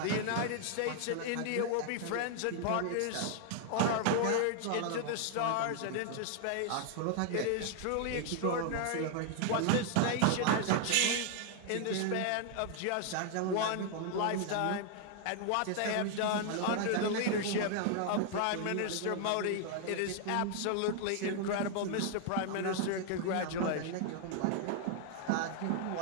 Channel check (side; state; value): both; different; correlation 0.00